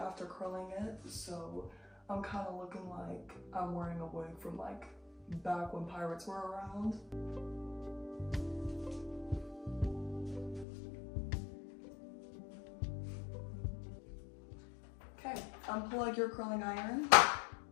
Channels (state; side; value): drops out; right; at 10.7 s